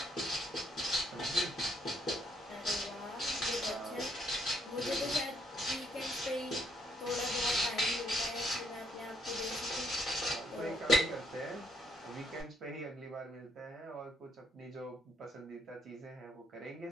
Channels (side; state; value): both; normal; correlation 0.71